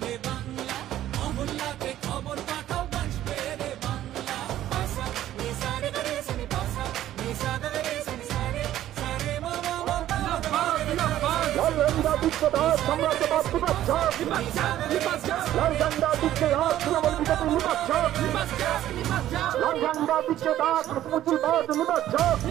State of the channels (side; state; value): left; quieter; 12.9 dB